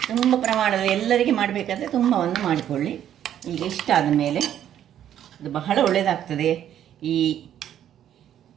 ತುಂಬ ಪ್ರಮಾಣದ ಎಲ್ಲರಿಗೆ ಮಾಡಬೇಕಾದ್ರೆ ತುಂಬವನ್ನು ಮಾಡಿಕೊಳ್ಳಿ. ಈಗ ಇಷ್ಟ ಆದ ಮೇಲೆ ಇದು ಬಹಳ ಒಳ್ಳೆಯದಾಗ್ತದೆ. ಈ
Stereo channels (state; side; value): quieter; left; 10.6 dB